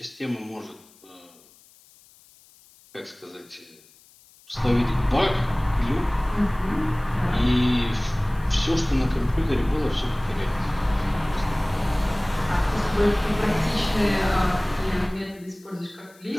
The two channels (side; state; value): left; noise; hiss, 27 dB below the sound